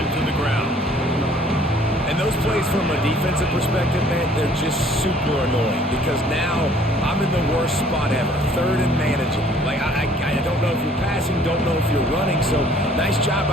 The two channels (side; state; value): both; normal; correlation 0.57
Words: the ground. And those plays from a defensive perspective, man, they're just super annoying because now I'm in the worst spot ever, 3rd and manageable. Like, I don't know if you're passing, don't know if you're running, so nice job